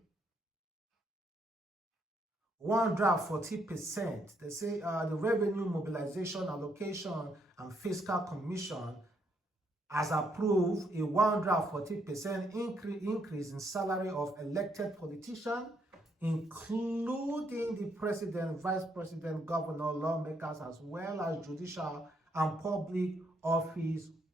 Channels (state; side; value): normal; both; correlation 0.74